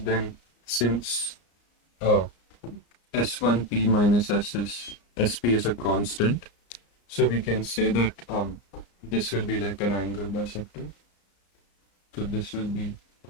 since S1P minus SP is a constant, so we can say that this will be like an angle bisector. So this will be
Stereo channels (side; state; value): right; late; 34 ms